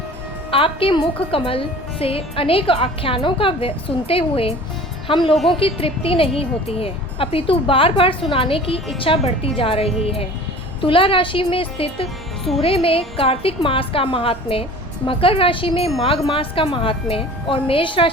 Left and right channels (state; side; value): normal; both; correlation 0.43